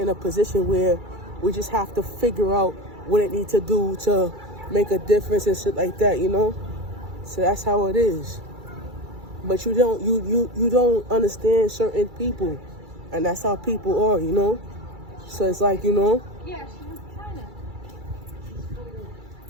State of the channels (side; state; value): left; late; 2.3 ms